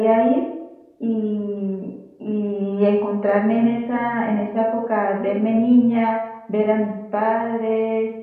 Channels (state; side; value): identical; both; correlation 1.00